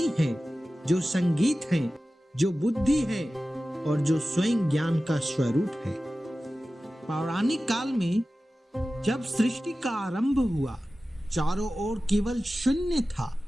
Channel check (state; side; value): normal; both; correlation 0.95